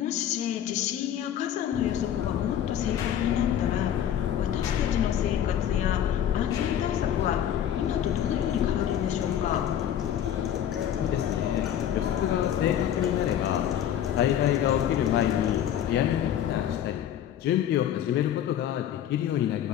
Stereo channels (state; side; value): quieter; right; 10.3 dB